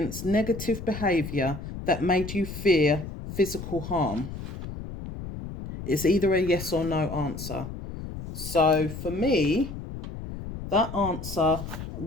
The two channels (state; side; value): noise; left; rumble, 9 dB below the sound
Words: negative behaviour that made you fear physical harm? It's either a yes or no answer. So for me, that answer